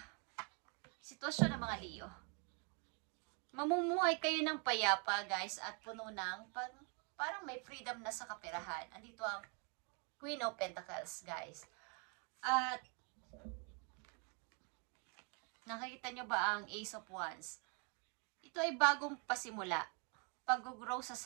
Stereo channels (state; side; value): quieter; left; 36.5 dB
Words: sitwasyon ng mga Leo. Mamumuhay kayo ng payapa, guys, at puno ng parang may freedom na sa kaperahan. Andito ang Queen of Pentacles, guys. At nakikita nyo ba ang Ace of Wands? Ito ay bagong pasimula. Pag-grow sa